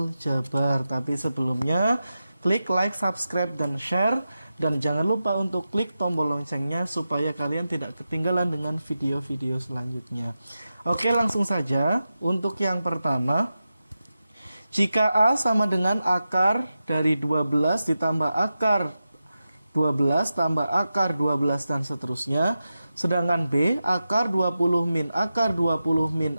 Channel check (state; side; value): inverted; both; correlation -0.92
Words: Tapi sebelumnya klik like, subscribe, dan share. Dan jangan lupa untuk klik tombol loncengnya supaya kalian tidak ketinggalan dengan video-video selanjutnya. Oke, langsung saja. Untuk yang pertama, jika A sama dengan akar dari 12 ditambah akar 12 tambah akar 12 dan seterusnya. Sedangkan B akar 20 min akar 20 min